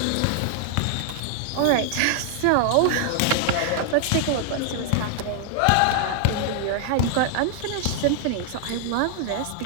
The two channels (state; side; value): different; both; correlation 0.00